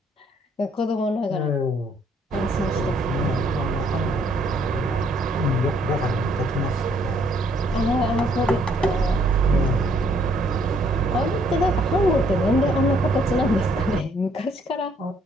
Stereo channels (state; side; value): normal; both; correlation 0.66